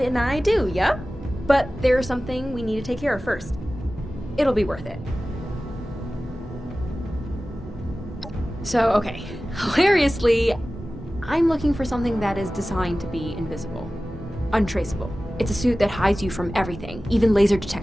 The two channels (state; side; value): normal; both; correlation 0.96